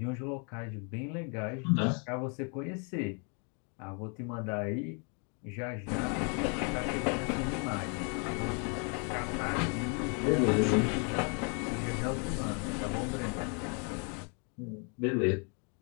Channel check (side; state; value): right; quieter; 37.8 dB